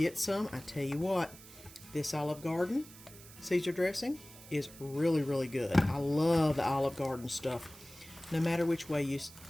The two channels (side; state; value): right; noise; hiss, 19 dB below the sound